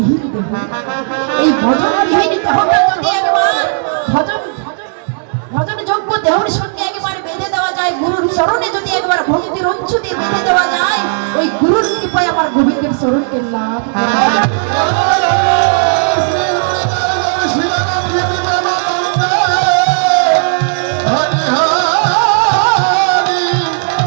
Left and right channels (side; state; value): left; silent; digital silence